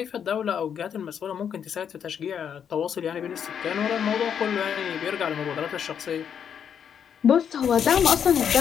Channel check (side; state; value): right; quieter; 8.0 dB